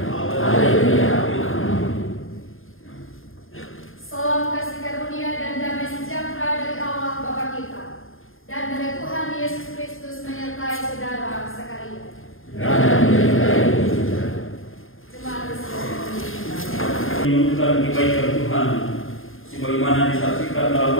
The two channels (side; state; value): right; late; 0.60 ms